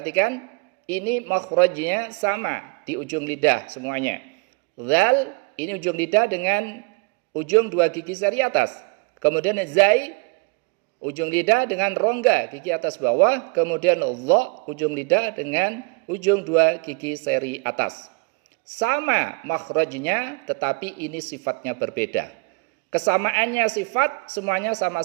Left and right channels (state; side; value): quieter; left; 31.5 dB